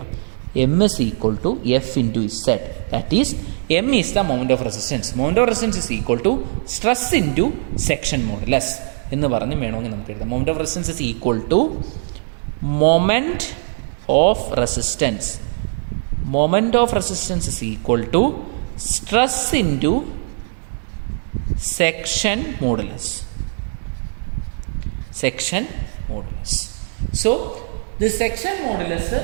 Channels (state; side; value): silent; left; digital silence